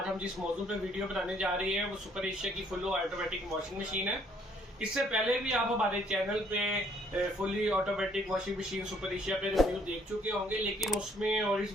हम जिस मौजू पे वीडियो बनाने जा रहे हैं वो सुपर एशिया की फुल ऑटोमेटिक वॉशिंग मशीन है। इससे पहले भी आप हमारे चैनल पे fully automatic washing machine super Asia पे रिव्यू देख चुके होंगे, लेकिन उसमें और इस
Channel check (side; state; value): both; normal; correlation 0.64